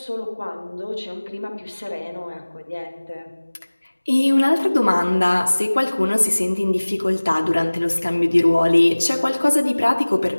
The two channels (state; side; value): inverted; both; correlation -1.00